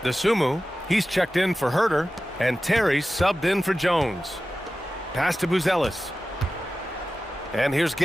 Desumu, he's checked in for Herter. And Terry subbed in for Jones. Pass to Buzelis. And here's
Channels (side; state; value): both; normal; correlation 0.95